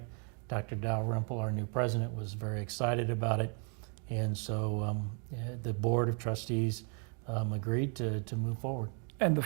Dr. Dalrymple, our new president, was very excited about it. And so the board of trustees agreed to move forward. And the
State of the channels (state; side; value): quieter; left; 39.2 dB